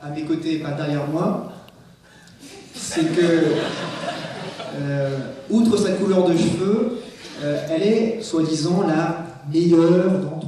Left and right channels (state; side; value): identical; both; correlation 1.00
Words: à mes côtés et pas derrière moi, c'est que, outre sa couleur de cheveux, elle est, soi-disant, la meilleure